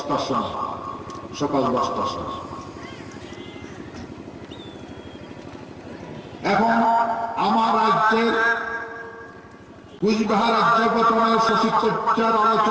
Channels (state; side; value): identical; both; correlation 1.00